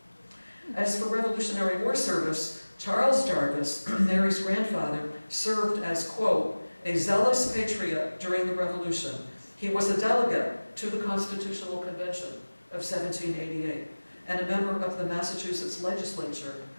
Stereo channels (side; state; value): both; inverted; correlation -1.00